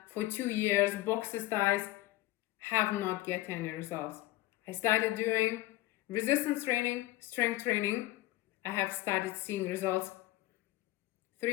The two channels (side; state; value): right; quieter; 17.2 dB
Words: for 2 years, boxer styles, have not get any results. I started doing resistance training, strength training. I have started seeing results